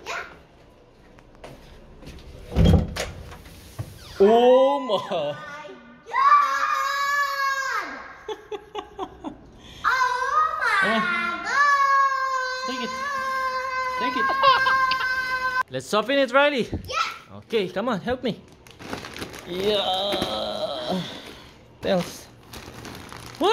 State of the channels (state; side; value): identical; both; correlation 1.00